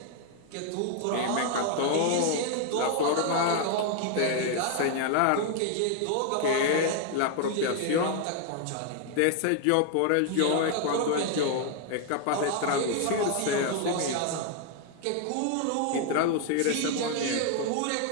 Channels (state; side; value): different; both; correlation 0.00